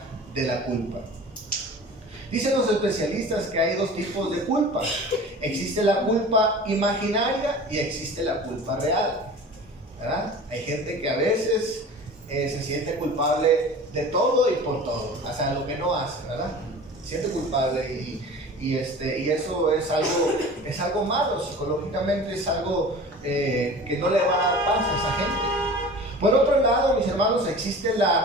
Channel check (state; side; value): normal; both; correlation 0.39